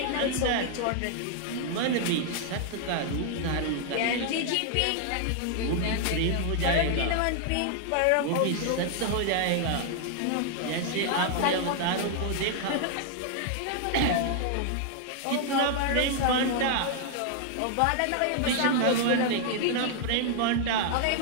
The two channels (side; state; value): both; different; correlation 0.00